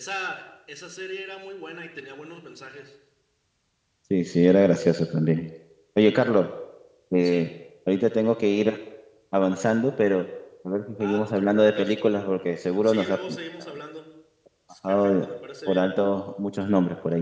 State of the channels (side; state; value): both; identical; correlation 1.00